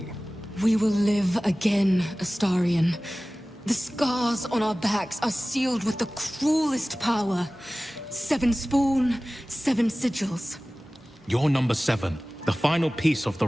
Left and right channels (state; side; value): normal; both; correlation 0.97